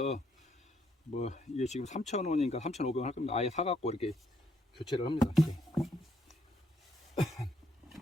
뭐, 이게 지금 3,000원인가 3,500원 할 겁니다. 아예 사갖고 이렇게 교체를 합니다. 이렇게.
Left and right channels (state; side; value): normal; both; correlation 0.72